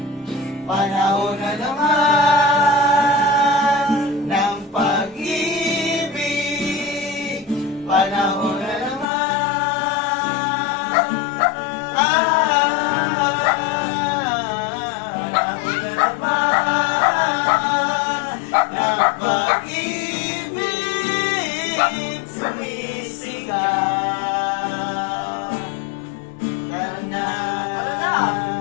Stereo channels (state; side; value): drops out; right; at 9.1 s